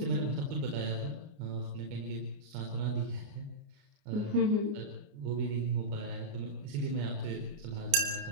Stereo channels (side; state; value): left; late; 29 ms